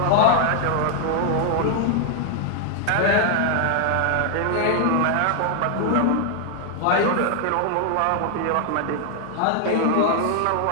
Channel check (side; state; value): both; different; correlation 0.00